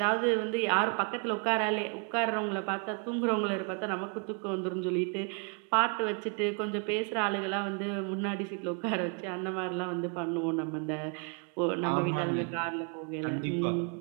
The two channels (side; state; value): left; quieter; 37.6 dB